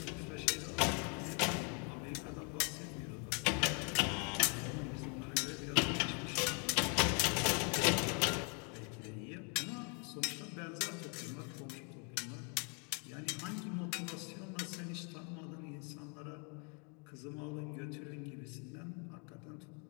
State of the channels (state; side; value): quieter; right; 36.6 dB